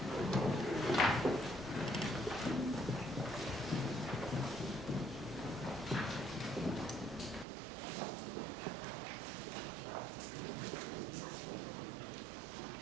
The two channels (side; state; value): left; drops out; at 7.5 s